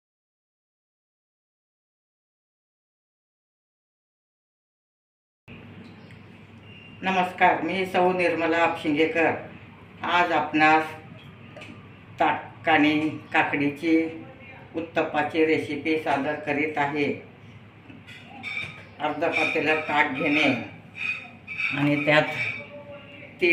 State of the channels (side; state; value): both; identical; correlation 1.00